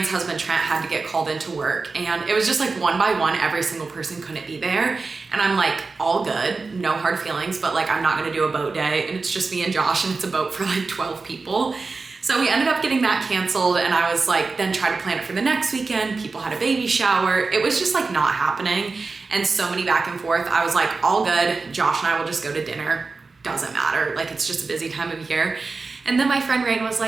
husband Trent had to get called into work, and it was just like one by one every single person couldn't be there, and I'm like, all good, no hard feelings, but like I'm not gonna do a boat day, and it's just me and Josh, and it's a boat for like 12 people. So we ended up getting that canceled, and I was like, then tried to plan it for the next weekend. People had a baby shower. It was just like not happening, and so many back and forth. I was like, all good, Josh and I will just go to dinner, doesn't matter, like it's just a busy time of year. And then my friend Rain was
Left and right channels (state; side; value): quieter; left; 4.1 dB